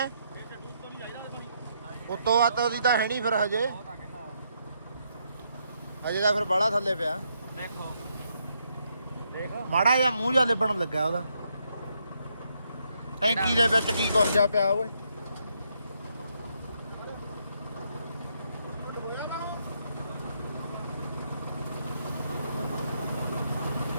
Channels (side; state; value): both; inverted; correlation -0.77